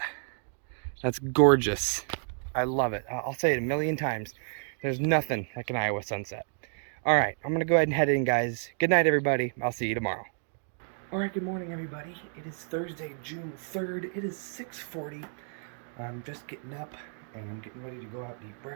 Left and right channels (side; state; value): left; silent; 58 dB below the other